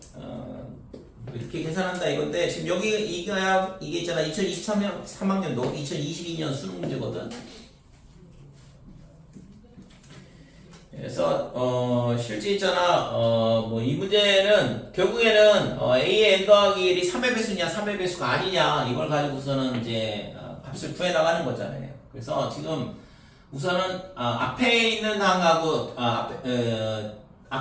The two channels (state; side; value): identical; both; correlation 1.00